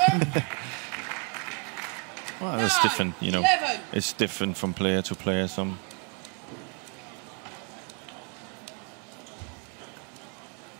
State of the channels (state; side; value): quieter; left; 32.4 dB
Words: Well, it's different, you know. It's different from player to player. Some